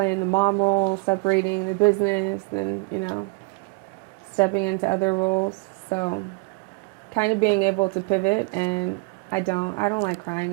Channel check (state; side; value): quieter; left; 28.8 dB